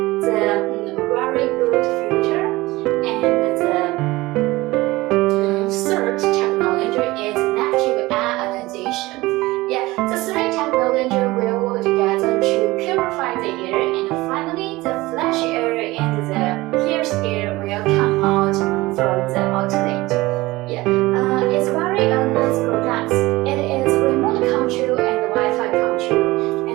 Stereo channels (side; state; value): left; quieter; 20.0 dB